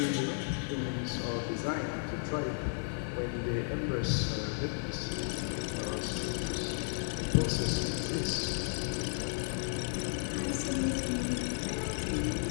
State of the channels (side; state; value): right; silent; digital silence